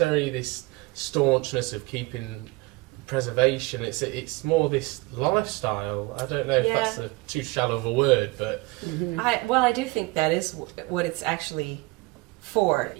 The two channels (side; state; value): left; quieter; 24.3 dB